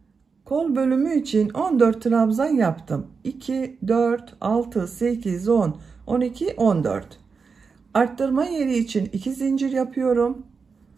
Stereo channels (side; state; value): left; quieter; 5.2 dB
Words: Kol bölümü için 14 trabzan yaptım. 2, 4, 6, 8, 10, 12, 14. Arttırma yeri için 2 zincir yapıyorum.